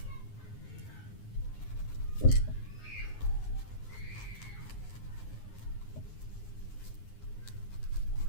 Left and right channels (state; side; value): late; right; 9.7 ms